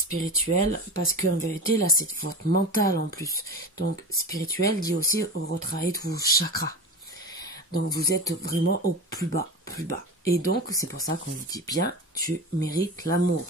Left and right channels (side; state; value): both; normal; correlation 0.29